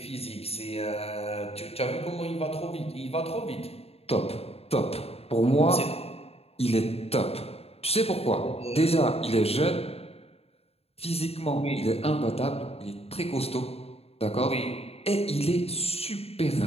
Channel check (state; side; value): late; right; 0.29 ms